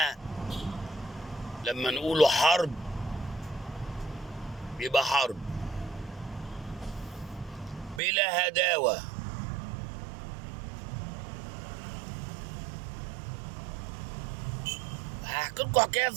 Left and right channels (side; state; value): left; drops out; at 8.0 s